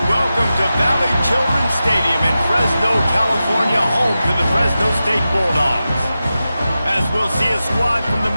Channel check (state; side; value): inverted; both; correlation -0.93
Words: Welcome to Valley Children's Stadium in Fresno, California, home to the Fresno State Bulldogs. As we'll see a squad from the